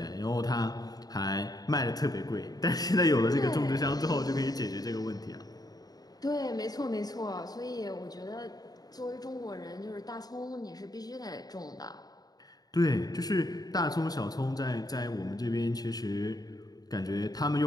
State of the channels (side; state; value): right; late; 0.19 ms